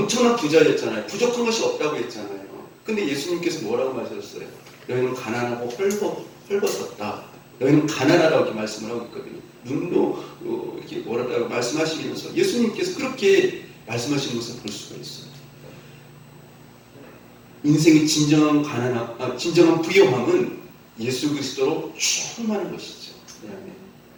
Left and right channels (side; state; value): both; identical; correlation 1.00